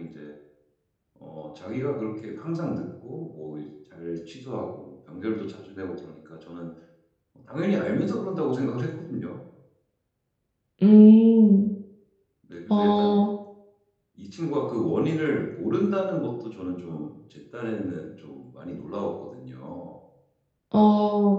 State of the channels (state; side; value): identical; both; correlation 1.00